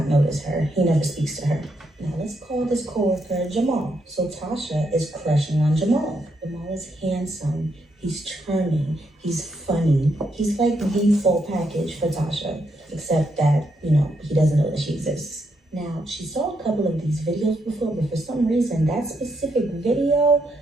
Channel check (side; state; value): both; normal; correlation 0.78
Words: notice her. He never speaks to her. Now, let's call this coworker Jamal. So Tasha is crushing on Jamal. Jamal is handsome. He's charming. He's funny. He's like the full package for Tasha. Except that, he doesn't know that she exists. Now, she saw a couple of these videos before, but for some reason, that specific video